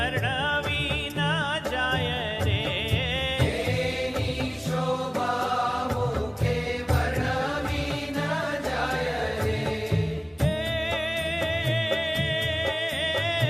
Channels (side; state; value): both; identical; correlation 1.00